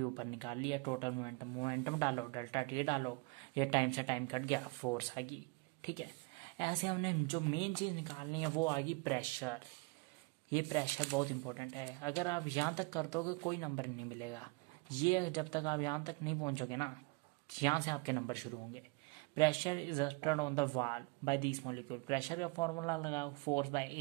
ऊपर निकाल लिया, टोटल मोमेंटम, मोमेंटम डालो डेल्टा टी डालो, ये टाइम से टाइम कट गया, फोर्स आ गई, ठीक है। ऐसे हमने जो मेन चीज निकालनी है वो आ गई प्रेशर। ये प्रेशर बहुत इंपॉर्टेंट है, अगर आप यहाँ तक कर दोगे कोई नंबर नहीं मिलेगा, ये जब तक आप यहाँ तक नहीं पहुंचोगे ना, यहाँ से आपके नंबर शुरू होंगे। Pressure is exerted on the wall by this molecule, pressure का फॉर्मूला लगाओ, फोर्स बाय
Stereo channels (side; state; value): left; quieter; 27.5 dB